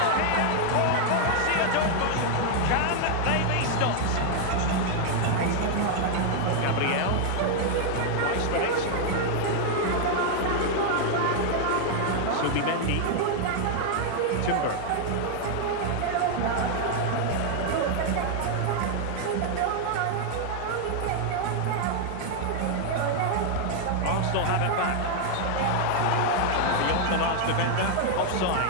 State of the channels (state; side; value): different; both; correlation 0.00